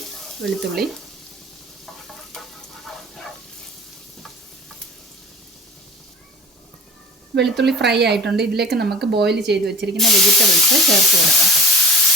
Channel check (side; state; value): both; normal; correlation 0.42